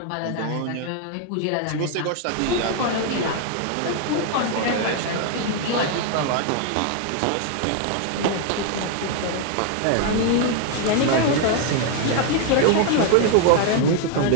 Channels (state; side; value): different; both; correlation 0.00